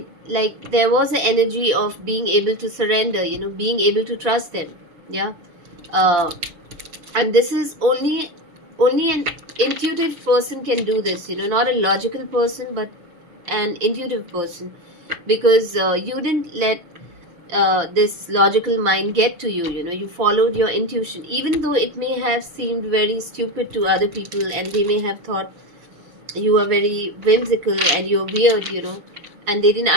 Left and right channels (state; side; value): late; left; 5.8 ms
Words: there was an energy of being able to surrender, you know, being able to trust them. Yeah. Uh, and this is only an intuitive person can do this, you know, not a logical person, but an intuitive person, because you didn't let this logical mind get to you, you know. You followed your intuition, even though it may have seemed very stupid to other people and they may have thought you are very whimsical and you're weird, you know, and they didn't